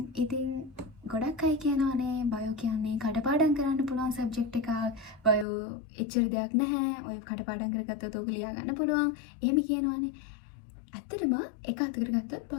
ඉතින් ගොඩක් අය කියනවානේ බයෝ කියන්නේ කඩපාඩම් කරන්න පුළුවන් සබ්ජෙක්ට් එකක්. බයෝ එච්චර දෙයක් නැහැ. ඔය කඩපාඩම් කරගත්තොත් ඔක ලියා ගන්න පුළුවන්. එහෙම කියනවානේ. ඇත්තටම එක අතකට ගත්තොත්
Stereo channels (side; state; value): right; drops out; at 5.5 s